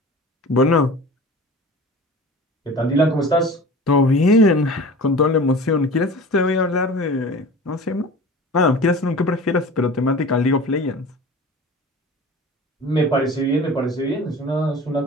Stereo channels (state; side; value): normal; both; correlation 0.38